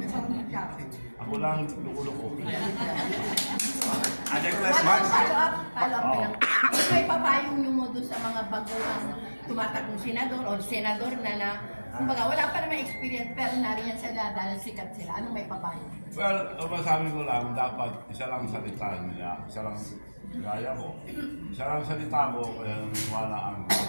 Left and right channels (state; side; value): inverted; both; correlation -1.00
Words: Ako lang ang lukuloko. Follow up lang. May papayong nyo mo doon sa mga baguhang tumatakong senador o senador na kumbaga wala pa naman experience pero nariyan sila dahil sikat sila. Anong may papayong? Well, masabi ko lang, dapat isa lang salita nila, isa lang gaya ko. Isa lang salita ko, kaya naniwala ang